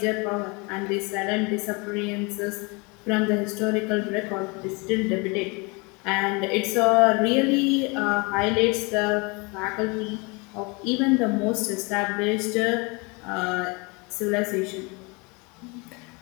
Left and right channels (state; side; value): quieter; right; 28.9 dB